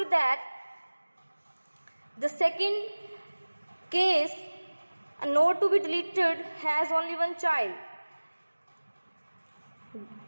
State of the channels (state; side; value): inverted; both; correlation -1.00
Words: that, the second case, a node to be deleted has only one child.